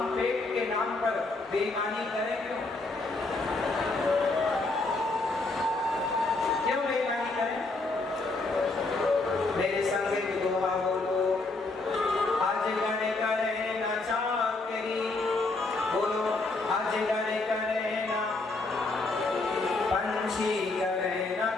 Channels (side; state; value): right; quieter; 3.3 dB